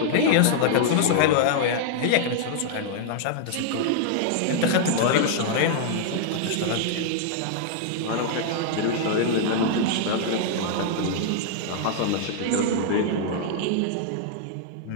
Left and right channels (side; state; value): both; different; correlation -0.01